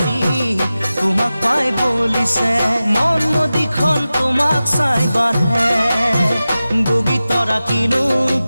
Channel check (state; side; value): inverted; both; correlation -0.95